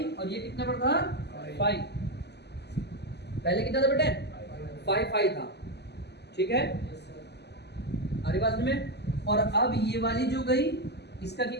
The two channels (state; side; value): late; right; 0.49 ms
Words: और ये कितने पर था, 5। पहले कितना था बेटे, 5 था, ठीक है, अरे बात में। और अब ये वाली जो गई, इसका